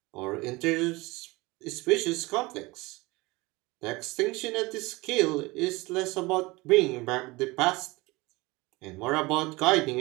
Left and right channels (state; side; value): quieter; left; 22.6 dB